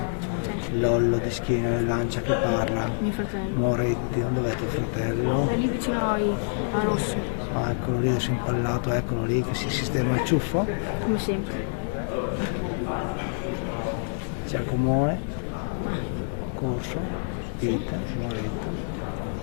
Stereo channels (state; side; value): silent; right; 60 dB below the other